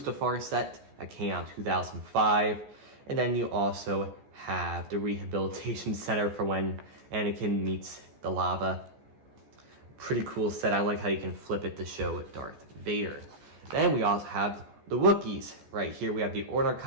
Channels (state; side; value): late; left; 14 ms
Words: set that came out in 2005. And then you also have the Rehabilitation Center for when Anakin meets the lava. Pretty cool set. I like how you can flip it to show Darth Vader. Then we also have the Wookiees right here. We have the Order